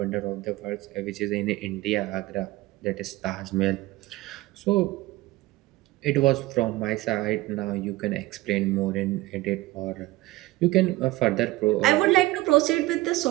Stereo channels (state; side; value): quieter; left; 18.7 dB